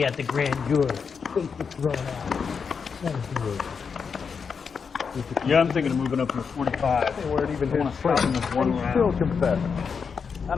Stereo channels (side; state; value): right; quieter; 5.9 dB